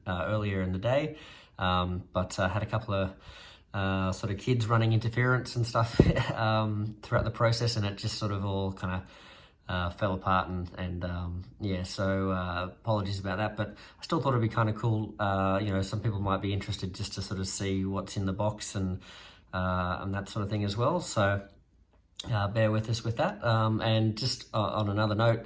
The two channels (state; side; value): identical; both; correlation 1.00